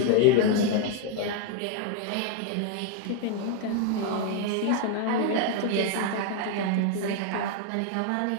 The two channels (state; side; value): different; both; correlation 0.00